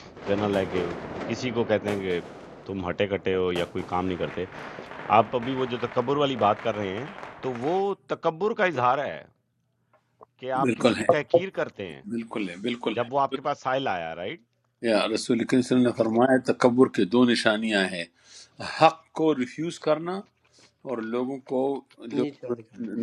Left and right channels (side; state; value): both; identical; correlation 1.00